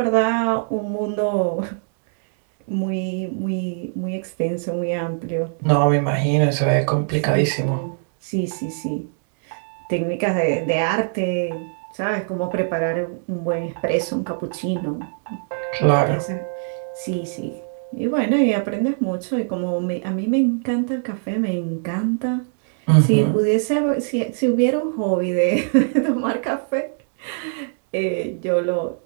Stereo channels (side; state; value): left; silent; digital silence